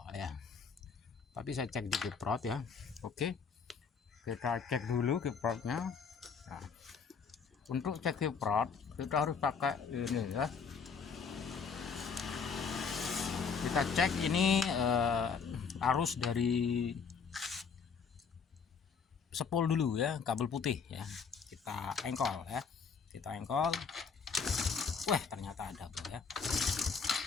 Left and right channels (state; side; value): quieter; right; 5.8 dB